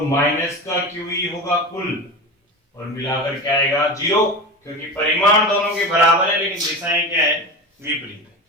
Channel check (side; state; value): both; normal; correlation 0.27